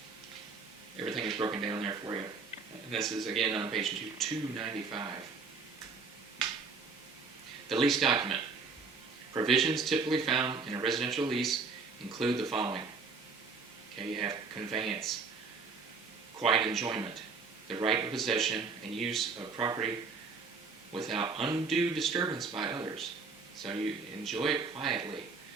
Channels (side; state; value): left; quieter; 4.7 dB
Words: everything is broken down there for you. And this is again on page 295. The lease document. Provisions typically found in a residential lease include the following. Okay, you have conveyance, quiet enjoyment, the right of possession and use of property without undue disturbance by others. So you enjoy it quietly.